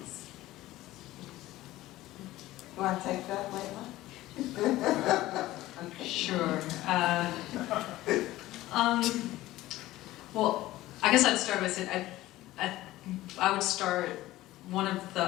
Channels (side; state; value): right; quieter; 16.5 dB